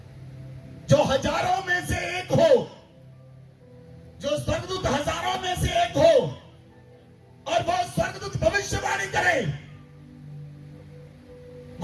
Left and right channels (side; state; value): both; identical; correlation 1.00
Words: जो हजारों में से एक हो, जो स्वर्गदूत हजारों में से एक हो, और वो स्वर्गदूत भविष्यवाणी करे,